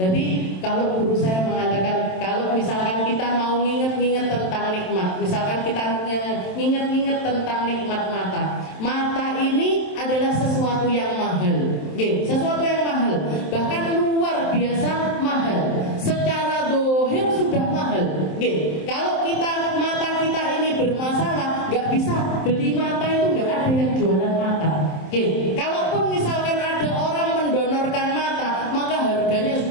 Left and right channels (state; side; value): late; right; 27 ms